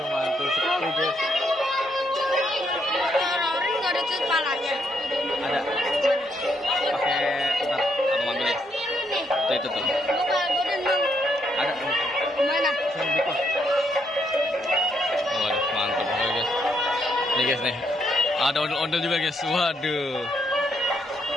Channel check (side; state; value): both; normal; correlation 0.75